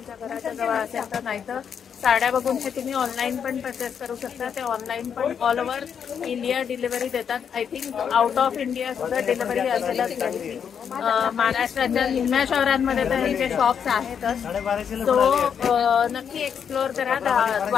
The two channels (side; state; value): right; quieter; 7.5 dB